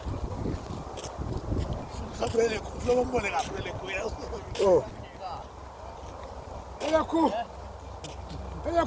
Sapele kulo mbone kapele kuya. Oh. Eyaku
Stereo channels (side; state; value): both; identical; correlation 1.00